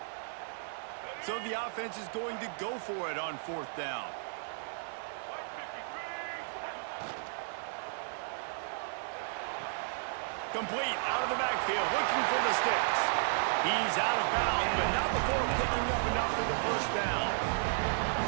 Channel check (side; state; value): left; silent; digital silence